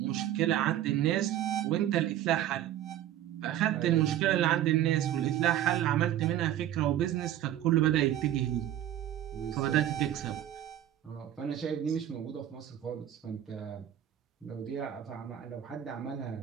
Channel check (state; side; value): quieter; left; 11.8 dB